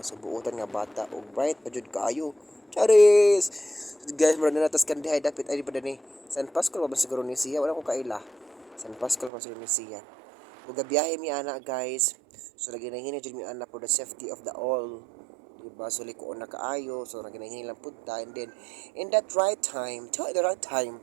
So buotan nga bata og bright pa jud kaayo. Charis. Guys, mura na natas Candy High dapat ay pa ni. San Pascual pa ba siguro ni siya? Wala ko kaila. San Pascual pa siguro ni siya. Ug gabiyahe mi ana guys. So naginahini jud mi ana for the safety of the all. Diba? So likoon na kaayo. So naginahini lang punta and then in that right time,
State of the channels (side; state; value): left; drops out; at 9.3 s